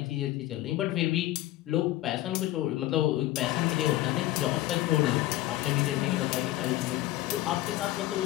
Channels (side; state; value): right; quieter; 15.9 dB